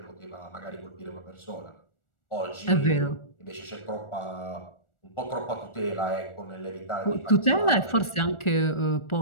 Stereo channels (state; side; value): late; right; 1.4 ms